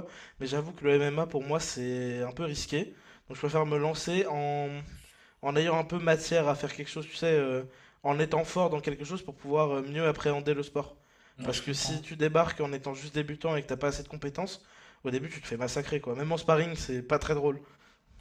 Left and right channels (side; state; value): both; identical; correlation 1.00